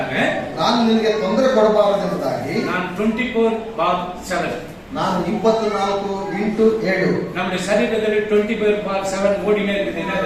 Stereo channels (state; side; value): identical; both; correlation 1.00